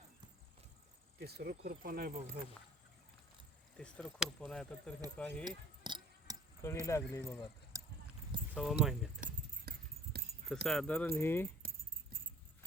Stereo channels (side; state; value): both; normal; correlation 0.52